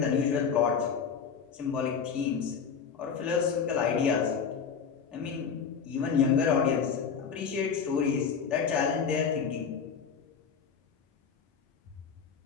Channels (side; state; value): right; quieter; 6.5 dB